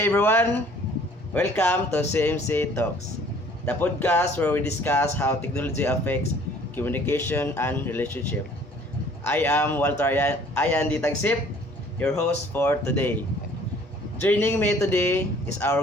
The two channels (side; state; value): both; normal; correlation 0.55